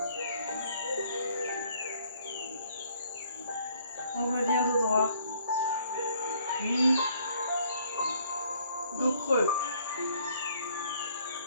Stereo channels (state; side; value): inverted; both; correlation -0.62